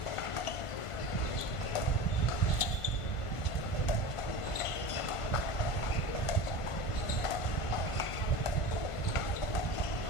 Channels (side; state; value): right; late; 1.5 ms